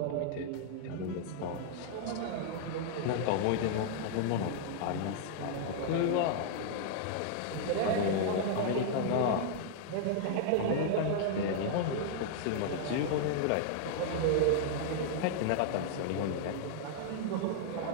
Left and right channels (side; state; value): both; different; correlation -0.01